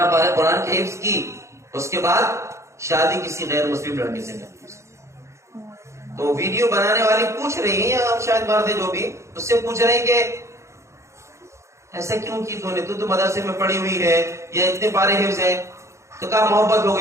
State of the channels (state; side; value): late; left; 0.14 ms